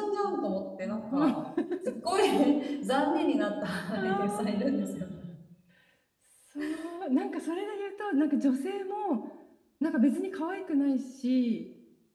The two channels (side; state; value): both; identical; correlation 1.00